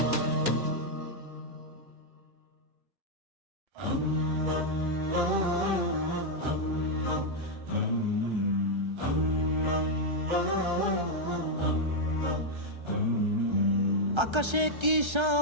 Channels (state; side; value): late; left; 1.3 ms